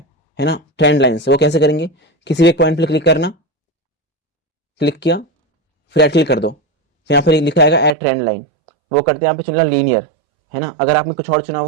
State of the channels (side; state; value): left; drops out; at 8.0 s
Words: ना, ट्रेंड लाइन से। वो कैसे करेंगे, किसी भी एक पॉइंट पर क्लिक करना, क्लिक किया, फिर ऐड क्लिक कर दो, फिर यहाँ पर लिखा आएगा ऐड ट्रेंड लाइन, वो करते हैं यहाँ पे चुनना लीनियर, है ना। अगर आपने कुछ और चुना